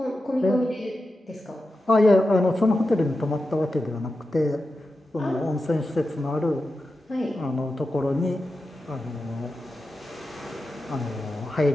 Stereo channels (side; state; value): both; normal; correlation 0.91